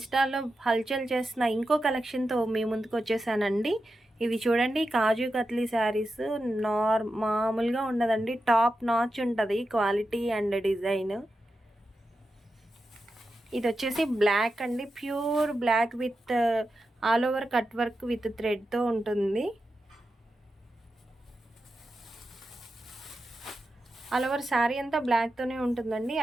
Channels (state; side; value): normal; both; correlation 0.90